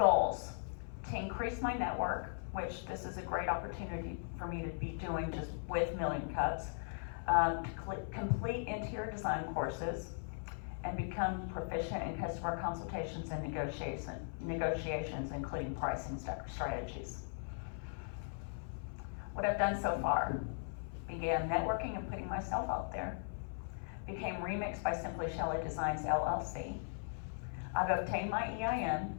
to increase my network, which this is a great opportunity for me to be doing just with Million Cups, to complete interior design courses, and become proficient in customer consultations and negotiations, including pricing strategies. What I've done so far: began networking and putting myself out there, became Remix by Simply Shelly Designs LLC. I've obtained my EIN,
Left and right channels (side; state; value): right; silent; 52 dB below the other